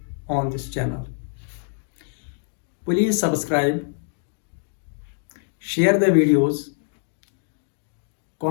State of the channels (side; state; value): right; silent; digital silence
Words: on this channel. Please subscribe, share the videos,